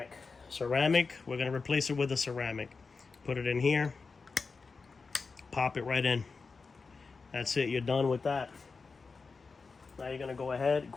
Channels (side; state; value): right; quieter; 4.5 dB